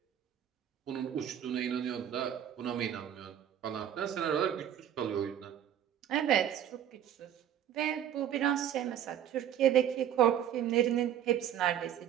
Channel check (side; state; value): left; quieter; 10.3 dB